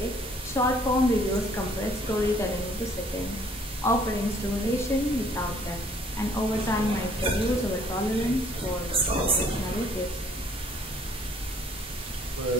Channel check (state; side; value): normal; both; correlation 0.60